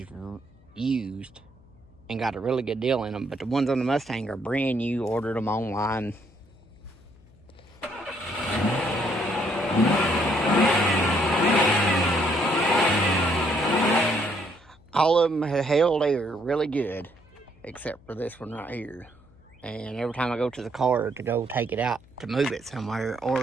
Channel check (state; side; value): noise; left; hum, 27 dB below the sound